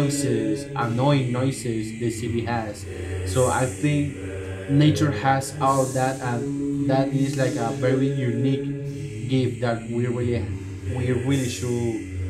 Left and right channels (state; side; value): identical; both; correlation 1.00